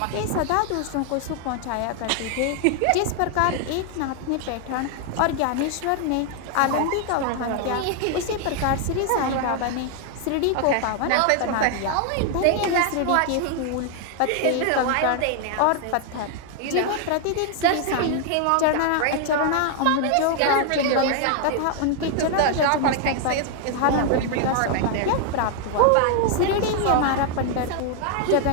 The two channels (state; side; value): different; both; correlation 0.00